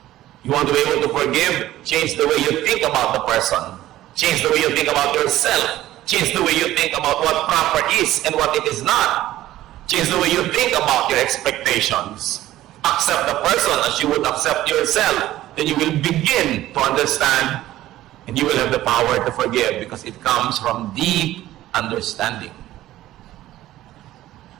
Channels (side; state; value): left; quieter; 14.7 dB